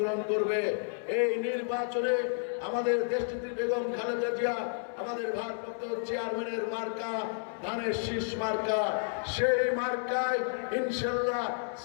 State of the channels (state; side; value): silent; right; digital silence